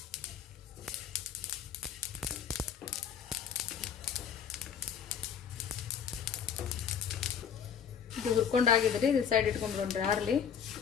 ಇದು ಹುರ್ಕೊಂಡಾಗಿದ್ರಿ, ಇದು ಸೈಡ್ ಇಟ್ಕೊಂಡ್ಬಿಡೋಣ್ರಿ ಆರ್ಲಿ.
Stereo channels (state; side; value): quieter; right; 7.8 dB